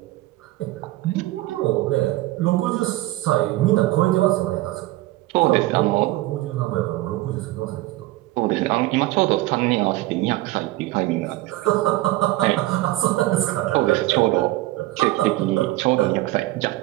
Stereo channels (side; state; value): left; quieter; 17.7 dB